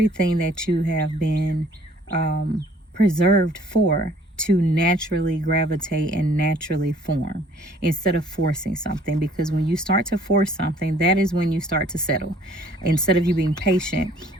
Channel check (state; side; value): normal; both; correlation 0.57